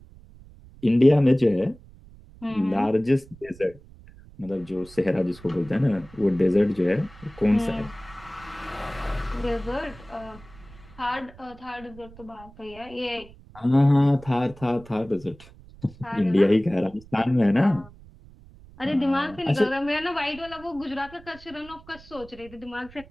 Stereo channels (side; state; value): right; noise; rumble, 21 dB below the sound